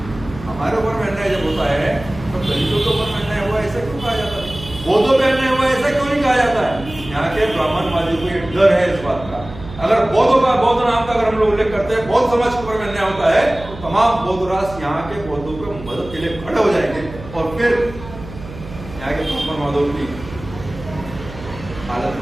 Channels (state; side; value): noise; right; hum, 14 dB below the sound